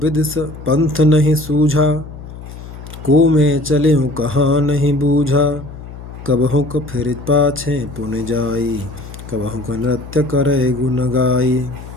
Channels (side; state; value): left; noise; hum, 13 dB below the sound